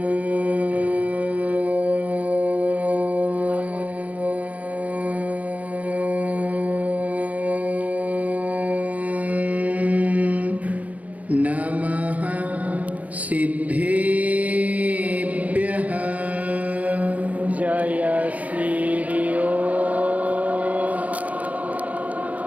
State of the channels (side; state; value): left; late; 0.072 ms